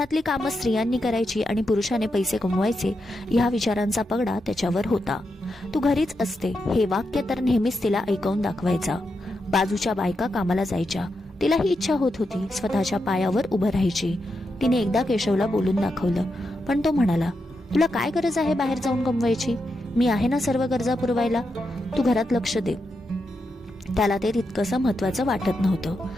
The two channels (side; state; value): both; normal; correlation 0.85